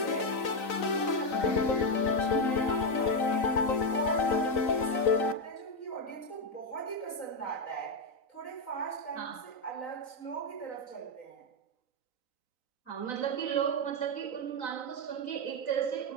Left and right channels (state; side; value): late; right; 3.9 ms